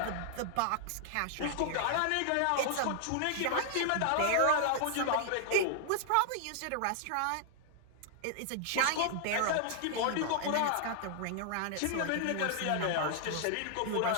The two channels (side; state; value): both; different; correlation -0.01